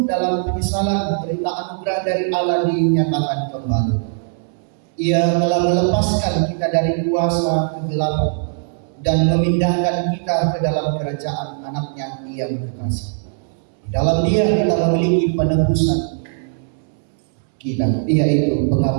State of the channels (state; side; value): silent; left; 66 dB below the other